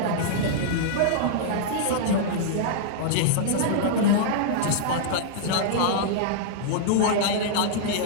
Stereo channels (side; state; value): both; different; correlation -0.02